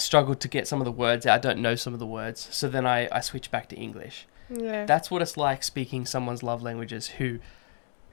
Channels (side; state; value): right; silent; digital silence